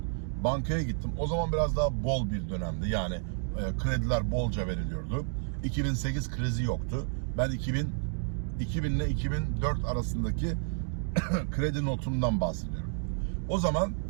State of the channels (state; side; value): silent; left; 57 dB below the other